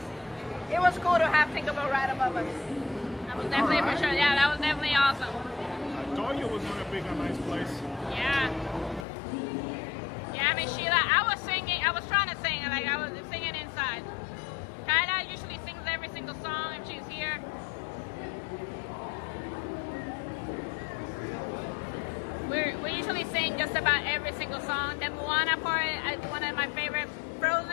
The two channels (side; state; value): right; drops out; at 9.1 s